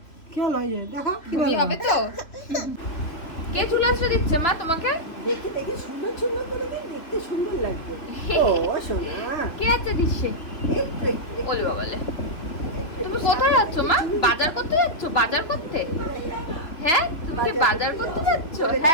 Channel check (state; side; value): late; right; 2.9 ms